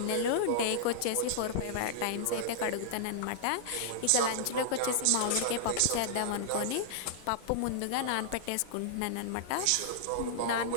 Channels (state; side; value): different; both; correlation -0.01